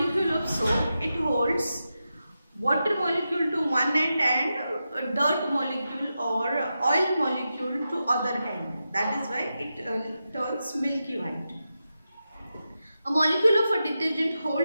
of soap, it holds water molecule to one end and a dirt molecule or oil molecule to other end. That is why it turns milky white. A molecule of a detergent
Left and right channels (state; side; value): inverted; both; correlation -0.90